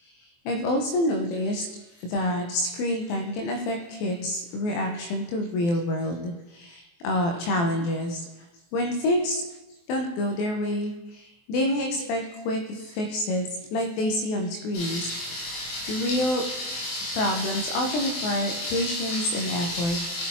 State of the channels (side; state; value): right; late; 23 ms